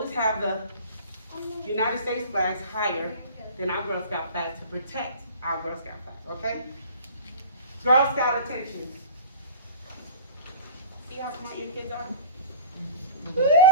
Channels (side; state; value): both; inverted; correlation -0.41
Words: have the United States flags higher than our Girl Scout flag to protect our Girl Scout flag, okay? Girl Scout attention. See how smart your kids are?